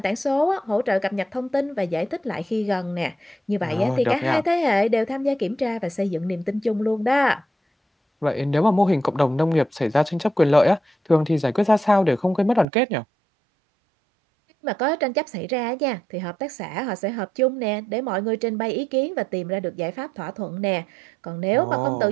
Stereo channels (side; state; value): left; drops out; at 12.7 s